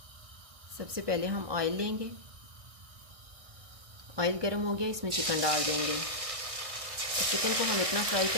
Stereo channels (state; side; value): late; left; 1.6 ms